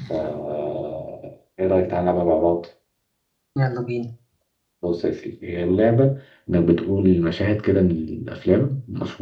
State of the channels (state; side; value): identical; both; correlation 1.00